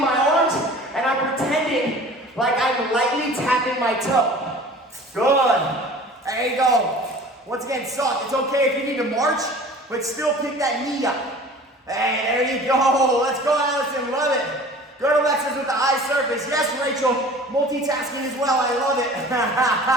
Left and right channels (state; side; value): normal; both; correlation 0.44